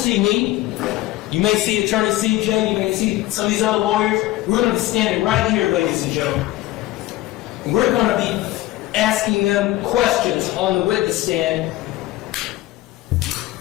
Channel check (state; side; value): quieter; right; 16.4 dB